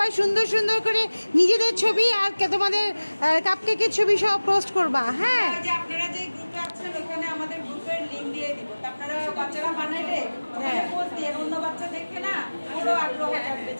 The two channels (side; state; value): both; inverted; correlation -1.00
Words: সুন্দর সুন্দর করে নিজেদের ছবি আর তোমাদের কাপকেকের ছবি সব পোস্ট করবা। হ্যাঁ, আপনারা যে গ্রুপে আছেন ওখানে আমাদের গ্রুপের লিংক দিয়ে দিব। আপনারা বাচ্চারা বানাইলে পোস্ট দিয়ে অন্য বাচ্চা দেখে না ওরও আগ্রহ থাকবে